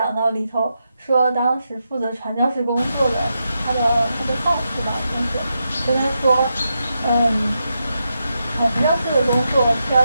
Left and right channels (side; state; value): both; inverted; correlation -0.85